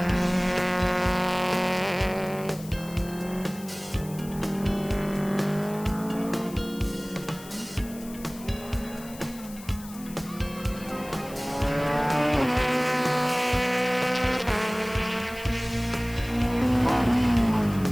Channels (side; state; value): left; noise; hiss, 17 dB below the sound